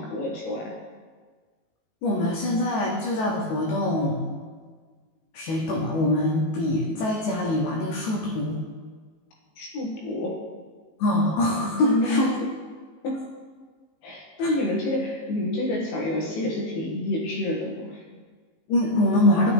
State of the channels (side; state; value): right; late; 19 ms